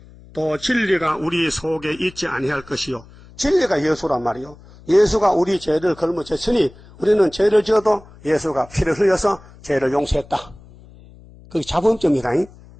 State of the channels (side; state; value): left; noise; hum, 22 dB below the sound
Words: 또 진리가 우리 속에 있지 아니할 것이요. 진리가 예수란 말이요. 예수가 우리 죄를 짊어졌으니 우리는 죄를 지어도 예수가 피를 흘려서 죄를 용서했다. 그게 자범점이다.